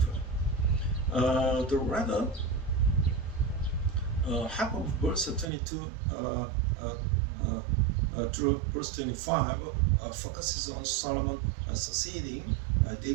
The rather half of verse 22 through verse 25 focuses on Solomon succeeding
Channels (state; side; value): drops out; left; at 5.5 s